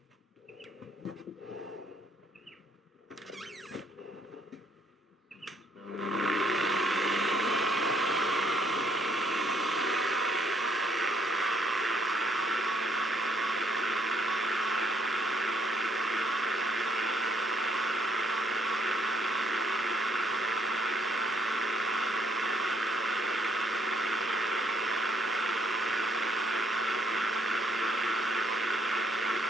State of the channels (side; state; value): both; normal; correlation 0.69